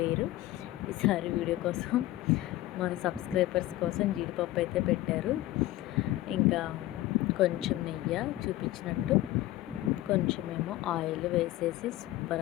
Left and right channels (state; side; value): quieter; right; 16.1 dB